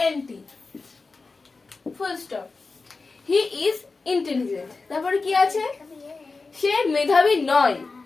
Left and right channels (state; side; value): quieter; right; 4.0 dB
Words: INTELLIGENT, full stop. He is intelligent, তারপরে কি আছে? সে মেধাবী নয়,